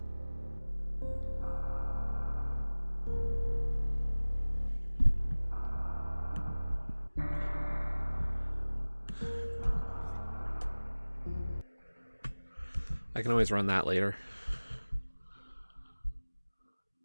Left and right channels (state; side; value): inverted; both; correlation -0.99